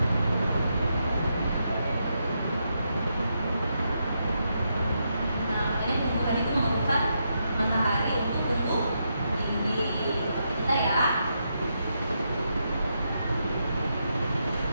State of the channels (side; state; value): both; inverted; correlation -0.82